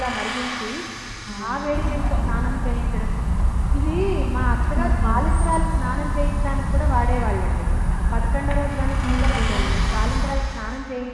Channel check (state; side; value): identical; both; correlation 1.00